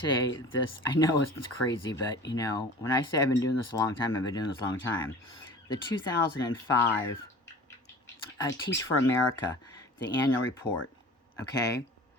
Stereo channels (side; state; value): both; normal; correlation 0.41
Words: this. I know it's crazy, but you know, when I say I've been doing this a long time, I've been doing this a long time. The 2005 Teach for America, the annual report. Okay,